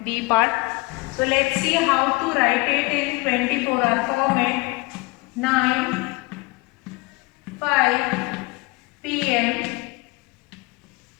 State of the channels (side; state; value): right; quieter; 25.1 dB